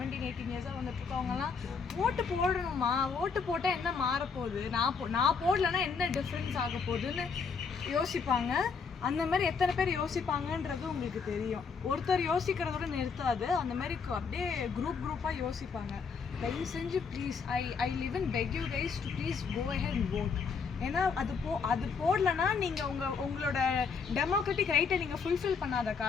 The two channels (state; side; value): quieter; right; 5.5 dB